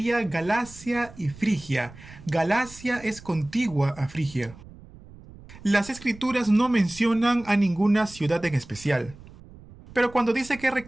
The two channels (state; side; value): noise; right; rumble, 20 dB below the sound